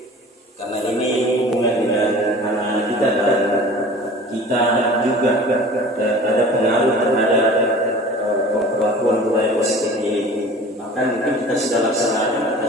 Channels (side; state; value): both; normal; correlation 0.42